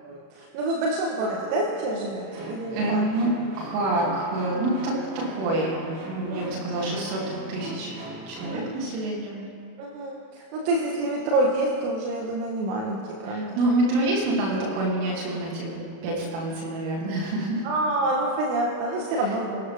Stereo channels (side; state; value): left; late; 36 ms